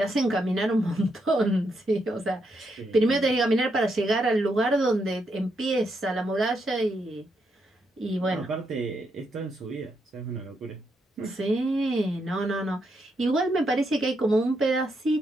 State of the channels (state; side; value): normal; both; correlation 0.80